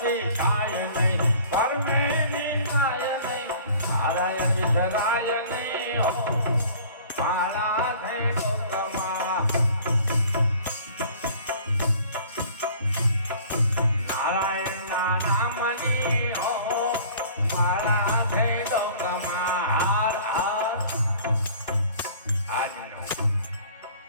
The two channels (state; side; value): inverted; both; correlation -0.49